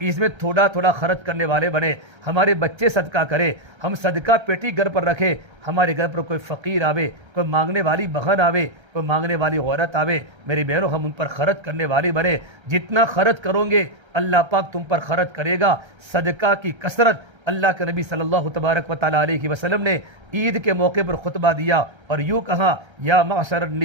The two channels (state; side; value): late; left; 1.3 ms